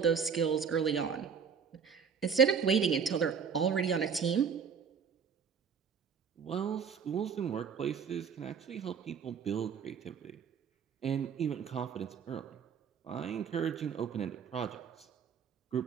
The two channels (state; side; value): quieter; left; 6.7 dB